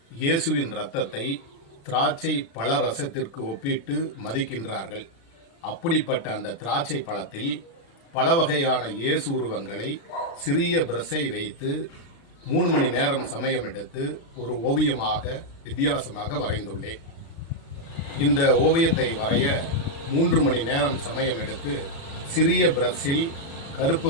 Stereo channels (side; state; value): right; late; 36 ms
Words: இயேசுவின் இரத்தத்தை திராட்சை பழ ரசத்திற்கு ஒப்பிட்டு மதிக்கின்றார்கள். அப்படிப்பட்ட அந்த திராட்சை பழத்தில் பல வகையான இயேசு உருவங்களை சிறிய பிரஷை வைத்து 3 மணி நேரம் சமயம் எடுத்து ஒரு ஓவியமாக வித்தியாசமாக வரைந்துள்ளேன். இந்த ஓவியத்தை வரைய 3 மணி நேரம் சமயம் எடுத்து சிறிய பிரஷில் கருப்பு